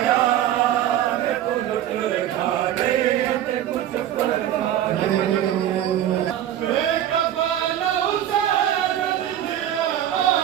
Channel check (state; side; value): quieter; left; 11.5 dB